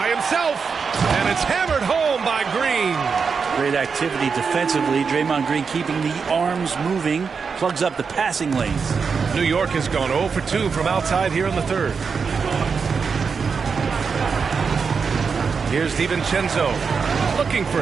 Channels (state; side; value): quieter; left; 5.6 dB